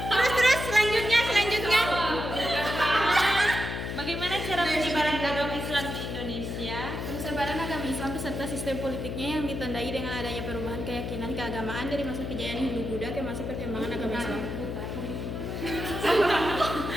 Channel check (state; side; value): noise; left; hum, 5 dB below the sound